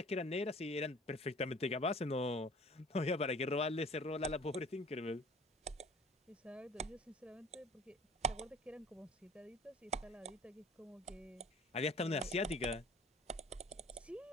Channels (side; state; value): both; normal; correlation 0.48